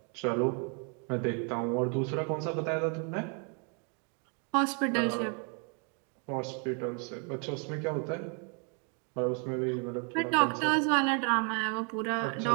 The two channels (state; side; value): quieter; left; 38.7 dB